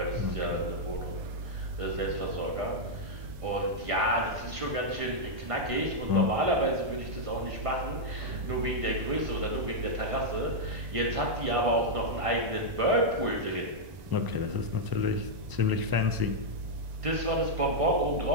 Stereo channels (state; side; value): late; left; 1.9 ms